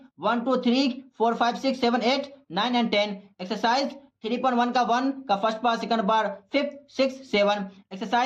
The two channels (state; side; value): identical; both; correlation 1.00